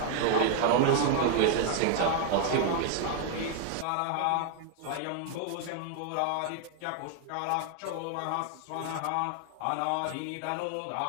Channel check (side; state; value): both; different; correlation 0.00